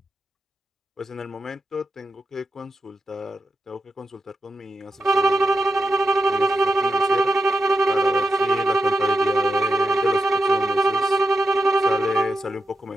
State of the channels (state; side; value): normal; both; correlation 0.87